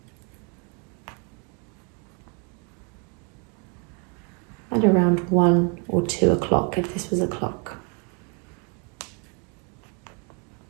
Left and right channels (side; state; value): left; quieter; 31.1 dB